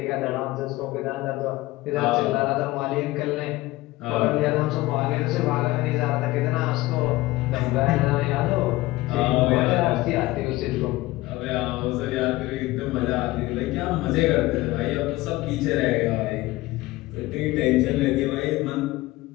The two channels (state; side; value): quieter; right; 18.9 dB